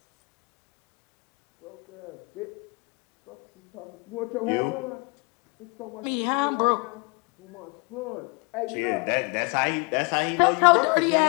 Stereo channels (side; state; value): right; quieter; 31.1 dB